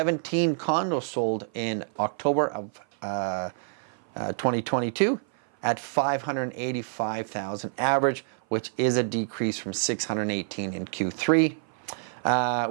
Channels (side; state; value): left; silent; 56 dB below the other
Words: condos sold in October of 2022 at $585,000 average, which is a decrease from $618 in Q3.